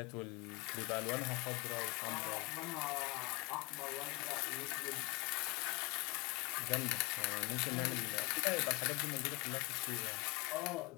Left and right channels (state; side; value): quieter; right; 24.9 dB